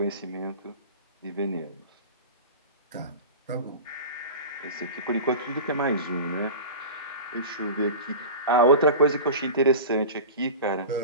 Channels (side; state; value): both; inverted; correlation -0.32